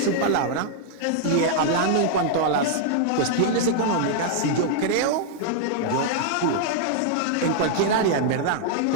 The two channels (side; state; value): both; different; correlation -0.01